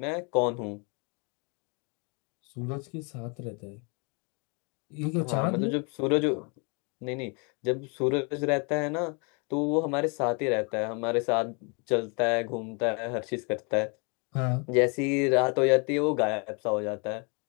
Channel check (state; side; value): quieter; right; 34.1 dB